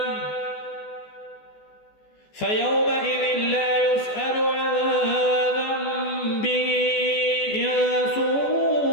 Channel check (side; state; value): right; late; 14 ms